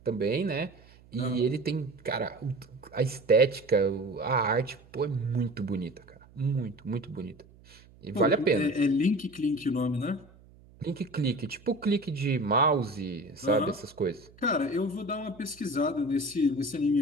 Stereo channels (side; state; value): right; noise; hum, 25 dB below the sound